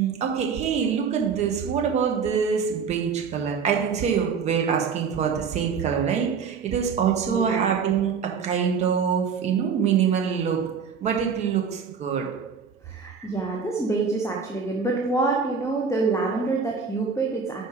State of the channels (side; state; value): left; quieter; 6.1 dB